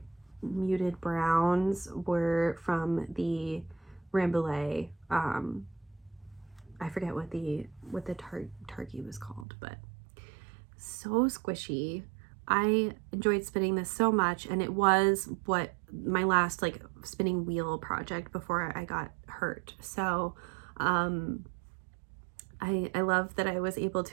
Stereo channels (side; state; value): left; drops out; at 9.5 s